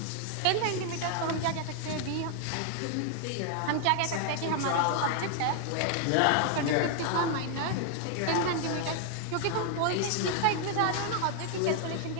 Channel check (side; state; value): both; different; correlation 0.00